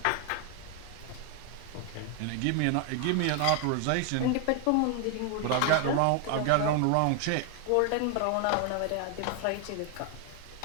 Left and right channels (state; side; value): different; both; correlation 0.01